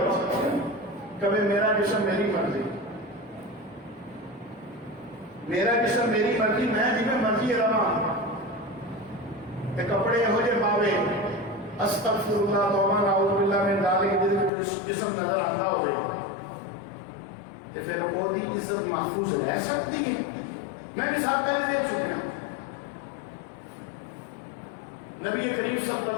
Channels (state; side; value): drops out; right; at 14.5 s